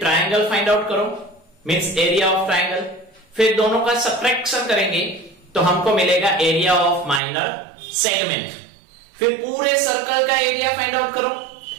फाइंड आउट करो, मींस एरिया ऑफ ट्राइंगल, फिर दोनों का सब्ट्रैक्शन करेंगे तो हमको मिलेगा एरिया ऑफ माइनर सेगमेंट। फिर पूरे सर्कल का एरिया फाइंड आउट करो,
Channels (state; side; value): drops out; left; at 7.2 s